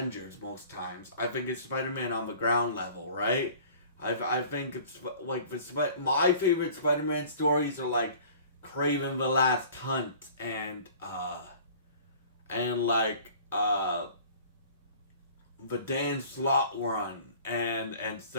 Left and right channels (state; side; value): inverted; both; correlation -0.46